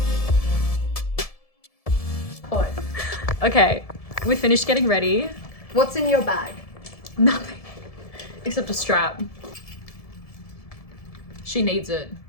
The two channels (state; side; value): late; right; 1.7 ms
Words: Okay, we finished getting ready. What's in your bag? Nothing. Except a strap. She needs it.